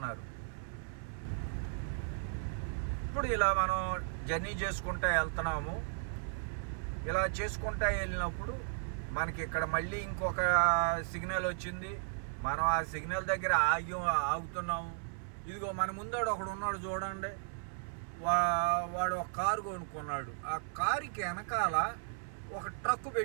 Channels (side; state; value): left; silent; 54 dB below the other